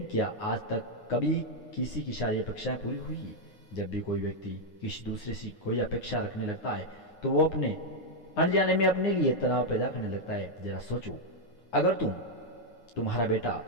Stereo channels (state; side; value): late; right; 9.6 ms